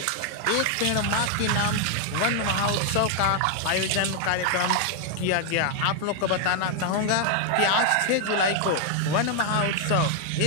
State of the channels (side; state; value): both; different; correlation 0.00